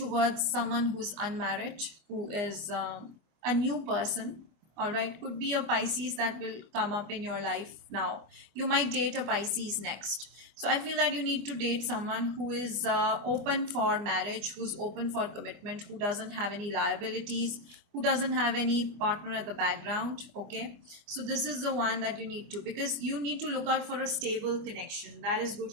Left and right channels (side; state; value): left; late; 24 ms